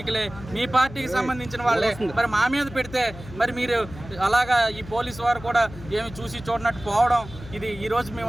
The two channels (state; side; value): noise; left; hum, 15 dB below the sound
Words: మీ పార్టీకి సంబంధించిన వాళ్ళే మరి మా మీద పెడితే మరి మీరు అలాగా ఈ పోలీసు వారు కూడా ఏమి చూసి చూడనట్టు పోవడం, ఇది ఈరోజు